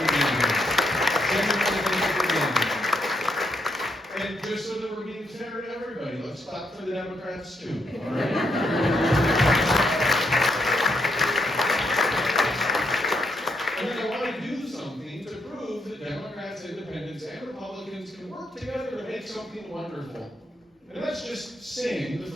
being here. Thank you for being here. And just so that we're being fair to everybody, let's clap for the Democrats too. All right? Democrats, independents, and Republicans can work together to make something wonderful. And let's just sing the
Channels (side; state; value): both; normal; correlation 0.78